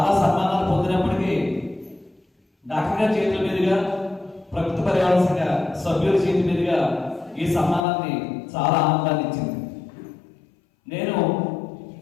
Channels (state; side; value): drops out; right; at 7.9 s